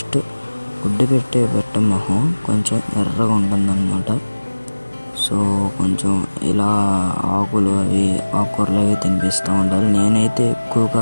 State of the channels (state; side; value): inverted; both; correlation -1.00